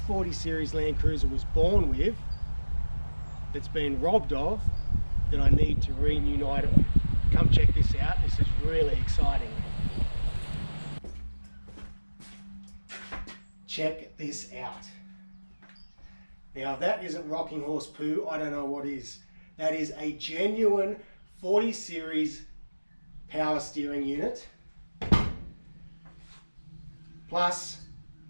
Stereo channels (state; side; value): inverted; both; correlation -1.00